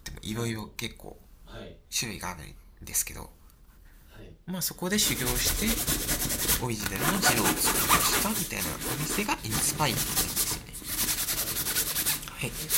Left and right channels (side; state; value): both; identical; correlation 1.00